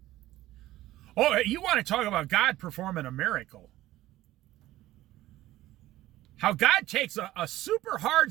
Oh, you want to talk about God performing a miracle. How God takes a super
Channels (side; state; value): left; quieter; 15.7 dB